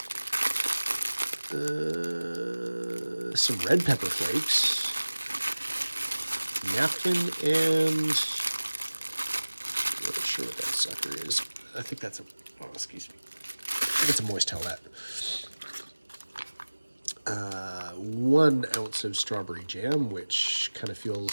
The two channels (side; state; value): both; inverted; correlation -1.00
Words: some red pepper flakes, napkin, and I'm not sure what that sucker is. I think that's excuse me. I think it's a moist towelette. 1 ounce of strawberry jam, which kind of